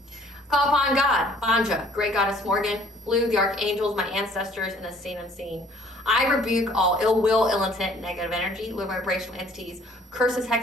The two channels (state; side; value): normal; both; correlation 0.58